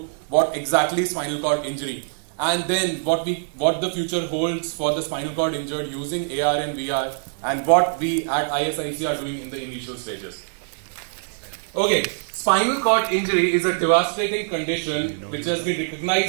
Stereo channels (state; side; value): silent; left; digital silence